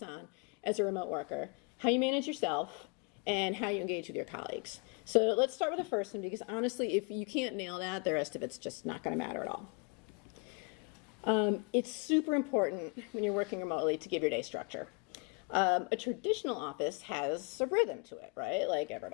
on as a remote worker: how you manage yourself and how you engage with your colleagues. So let's start with the first one, because honestly, if you can't nail that, the rest of it's just not going to matter at all. It's super important when you're working remotely to give your day structure. A traditional office has a rhythm to it, right? Like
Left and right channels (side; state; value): right; quieter; 34.3 dB